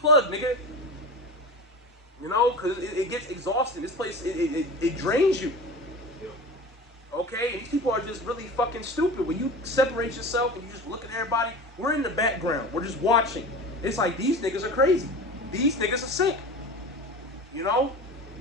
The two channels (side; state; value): both; normal; correlation 0.32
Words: nigga. You know, because it gets exhausting. This place, it drains you. Yeah. Okay? And these people are just really fucking stupid. When you separate yourself and you just look at everybody, we're in the background. We're just watching. It's like, these niggas are crazy. These niggas are sick. You know?